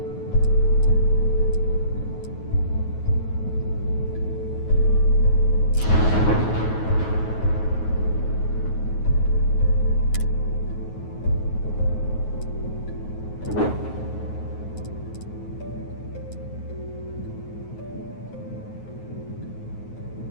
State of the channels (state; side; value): late; right; 9.3 ms